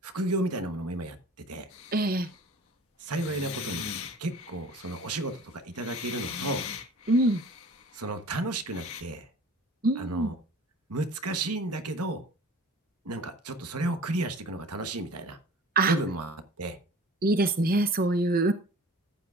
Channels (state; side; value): normal; both; correlation 0.44